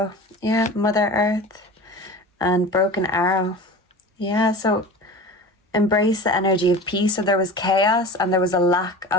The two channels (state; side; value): normal; both; correlation 0.35